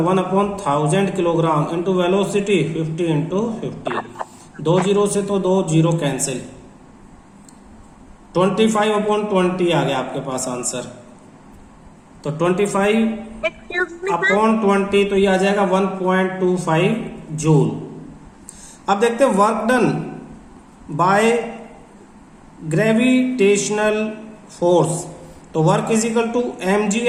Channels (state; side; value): identical; both; correlation 1.00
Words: 1/1000 kilogram, into velocity 50 into 50, 2 zero से तो 2 जीरो कैंसिल, 25/20 आ गया आपके पास आंसर। तो 25/20 तो ये आ जाएगा 1.25 जूल। अब देखते हैं work done by gravitational force, तो work is equal to